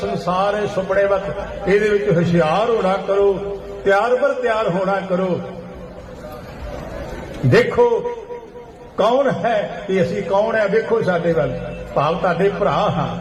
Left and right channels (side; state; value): both; identical; correlation 1.00